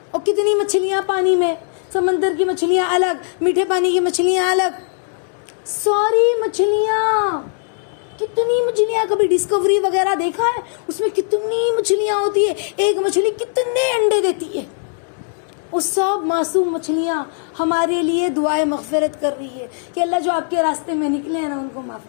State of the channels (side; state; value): right; silent; digital silence